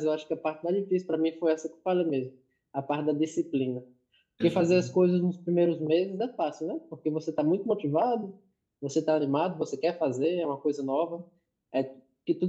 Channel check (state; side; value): identical; both; correlation 1.00